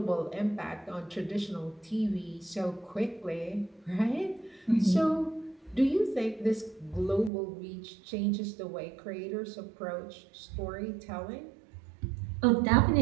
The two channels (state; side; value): drops out; left; at 7.3 s